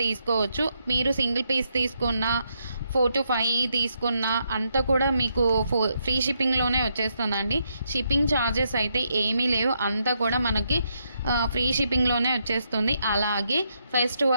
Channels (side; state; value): both; inverted; correlation -0.79